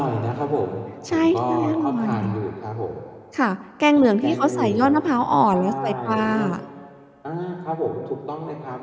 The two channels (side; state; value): both; identical; correlation 1.00